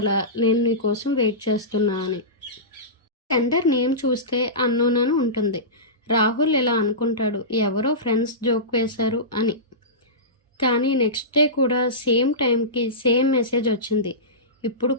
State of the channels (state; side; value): normal; both; correlation -0.19